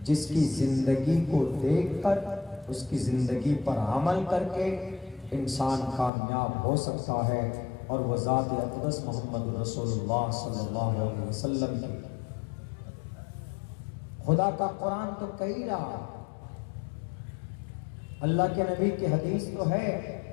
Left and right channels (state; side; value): drops out; right; at 6.1 s